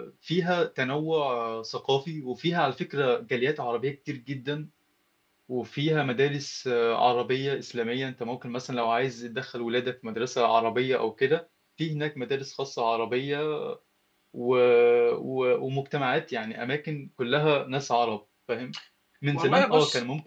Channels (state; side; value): identical; both; correlation 1.00